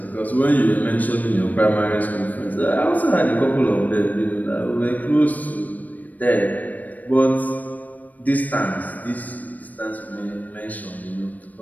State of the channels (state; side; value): late; right; 0.079 ms